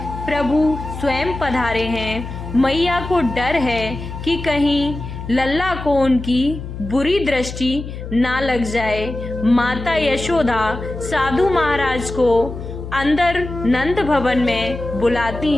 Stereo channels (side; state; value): left; noise; hum, 9 dB below the sound